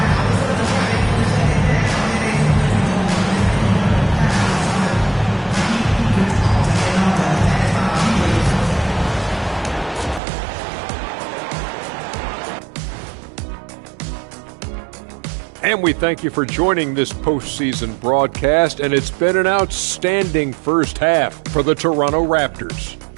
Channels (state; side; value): drops out; left; at 10.2 s